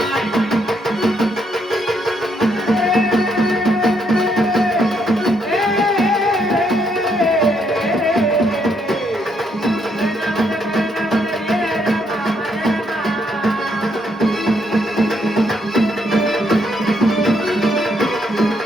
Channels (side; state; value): both; normal; correlation 0.74